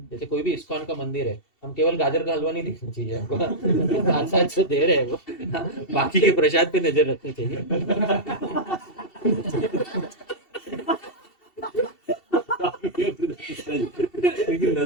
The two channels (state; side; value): late; right; 2.7 ms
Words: जैसे कोई भी इस्कॉन का मंदिर है, हम केवल गाजर का हलवा नहीं देखना चाहिए हमको, साथ साथ जो दे रहे हैं वो, हाँ, बाकी के प्रसाद पे नजर रखनी चाहिए। लेकिन